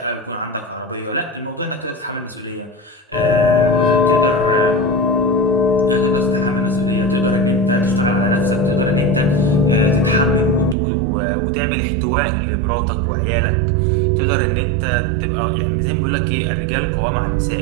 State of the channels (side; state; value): left; drops out; at 10.8 s